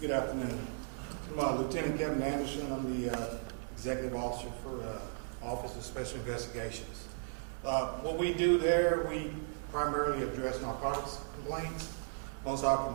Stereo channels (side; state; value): left; silent; digital silence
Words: Good afternoon. I'm Lieutenant Kevin Anderson. I'm the Executive Officer for Office of Special Investigations. What we do there, we primarily address narcotics complaints. Most of our